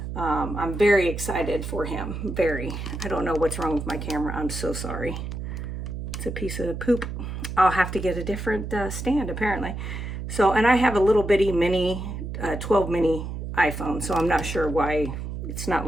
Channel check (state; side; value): noise; right; hum, 6 dB below the sound